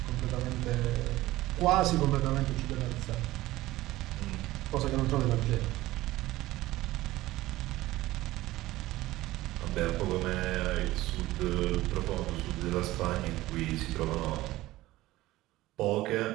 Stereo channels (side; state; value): left; quieter; 17.2 dB